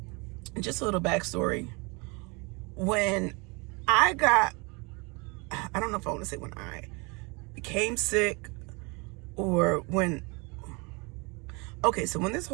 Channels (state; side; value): quieter; left; 29.0 dB